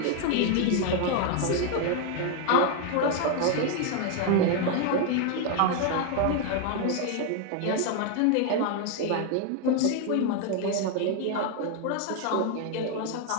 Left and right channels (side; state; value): both; different; correlation 0.01